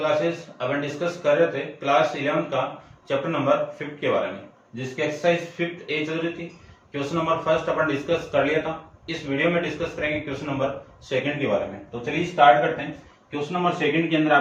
अपन डिस्कस कर रहे थे क्लास 11 का चैप्टर नंबर 5 के बारे में, जिसकी एक्सरसाइज 5 ए चल रही थी। क्वेश्चन नंबर फर्स्ट अपन डिस्कस कर लिया था। इस वीडियो में डिस्कस करेंगे क्वेश्चन नंबर सेकंड के बारे में। तो चलिए स्टार्ट करते हैं। क्वेश्चन नंबर सेकंड के अंदर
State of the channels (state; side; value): identical; both; correlation 1.00